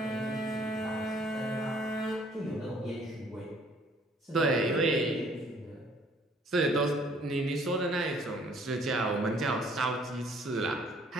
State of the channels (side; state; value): both; normal; correlation 0.59